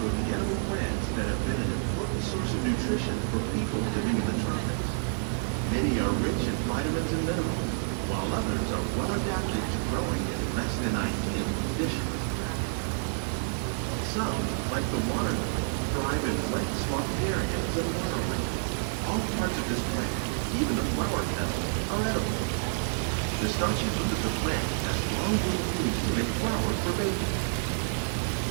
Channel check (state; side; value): silent; left; 59 dB below the other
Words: of the edible plants that have been an important source of nutrition for people living in the tropics. Many are rich in vitamins and minerals, while others are well adapted to growing in less than ideal conditions. Some, like the water lily, thrive in wet, swampy areas and waterways. All parts of this plant, even the flower petals, are edible. The starchy root of the plant has long been used to make flour for baking.